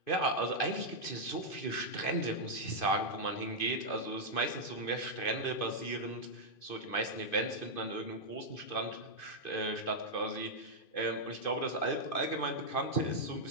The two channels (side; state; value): right; late; 2.5 ms